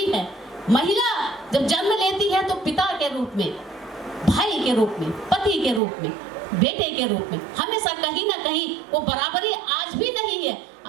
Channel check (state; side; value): drops out; left; at 5.8 s